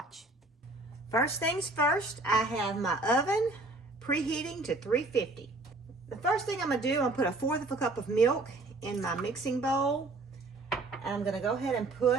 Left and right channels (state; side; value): quieter; left; 3.0 dB